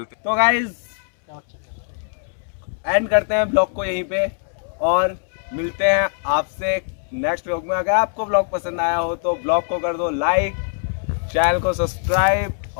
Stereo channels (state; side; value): silent; right; digital silence